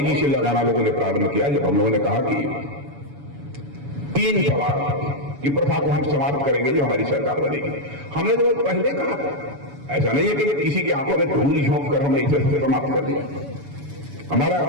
से लगाना लोगों ने प्रारंभ किया जब हम लोगों ने कहा कि 3 तलाक, कि प्रथा को हम समाप्त करेंगे जो हमारी सरकार बनेगी। हमने तो पहले कहा था, ऐसा नहीं है कि किसी की आंखों में धूल झोंक कर हमने इसे समाप्त कर दिया।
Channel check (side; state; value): left; late; 7.1 ms